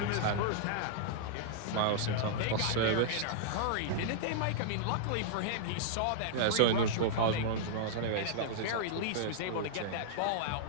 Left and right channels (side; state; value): both; different; correlation -0.02